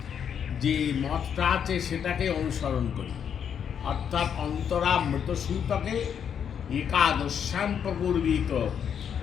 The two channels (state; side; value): quieter; right; 8.0 dB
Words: যে মতটা আছে সেটাকে অনুসরণ করি, অর্থাৎ অন্তরা মৃতসূতকে একাদশ্যাম প্রপূর্বিত